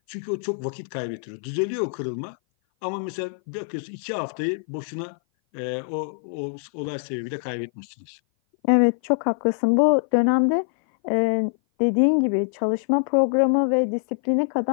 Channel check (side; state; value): right; silent; 58 dB below the other